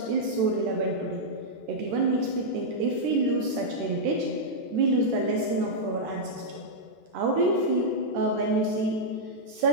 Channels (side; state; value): left; late; 13 ms